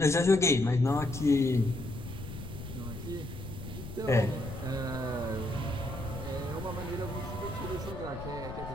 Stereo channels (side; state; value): left; noise; rumble, 10 dB below the sound